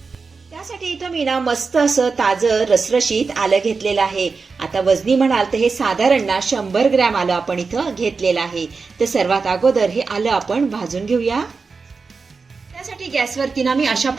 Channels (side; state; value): left; quieter; 4.6 dB